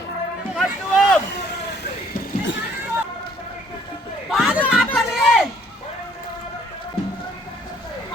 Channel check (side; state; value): both; normal; correlation 0.62